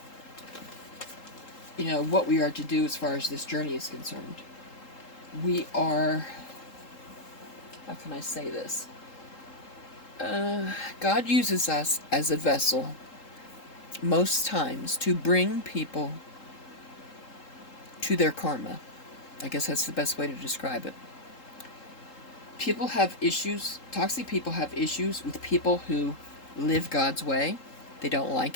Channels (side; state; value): right; late; 3.8 ms